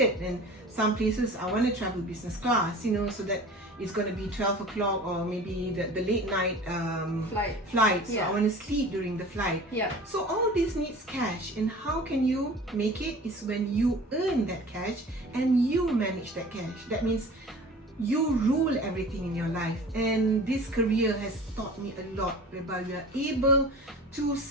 and some places I want to travel business class, you know, so that it's going to be 12 o'clock, or maybe the late night flight. So I want to sleep during the flight. So all this needs cash, and how can you make it is when you earn that cash and you manage that cash. That means you rule everything in your life, and this career has taught me a lot, whereby we are able to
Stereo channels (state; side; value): normal; both; correlation 0.41